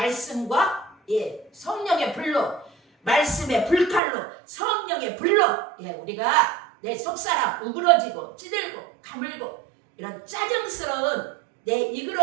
성령의 불로 말씀의 불칼로 성령의 불로 우리가 내 속사람 우그러지고 찌들고 가물고 이런 짜증스러운 내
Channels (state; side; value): drops out; left; at 4.0 s